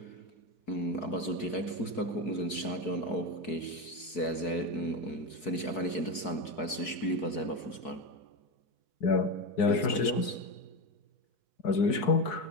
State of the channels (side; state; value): right; late; 4.6 ms